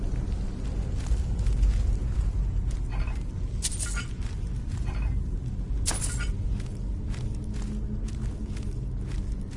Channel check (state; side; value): identical; both; correlation 1.00